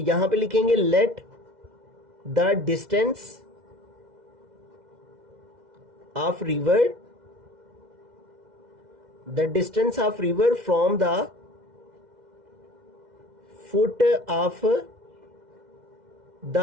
पे लिखेंगे let the distance of river, the distance of river from the foot of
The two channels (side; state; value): left; late; 2.0 ms